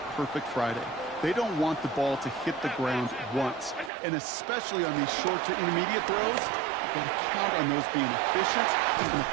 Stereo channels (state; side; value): drops out; left; at 3.9 s